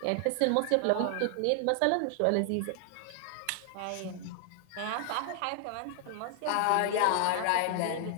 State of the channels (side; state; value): both; different; correlation 0.00